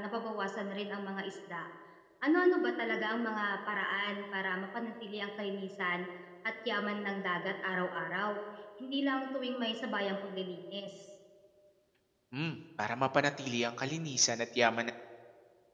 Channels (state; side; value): identical; both; correlation 1.00